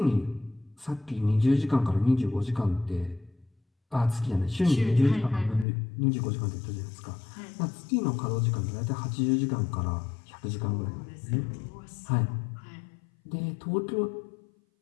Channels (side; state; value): right; drops out; at 5.7 s